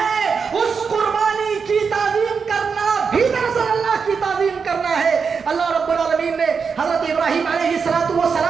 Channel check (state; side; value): quieter; left; 5.7 dB